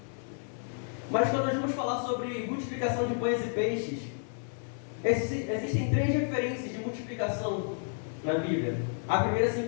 Mas quando nós vamos falar sobre multiplicação de pães e peixes, existem 3 referências de multiplicação na Bíblia. A primeira se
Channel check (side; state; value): right; silent; 57 dB below the other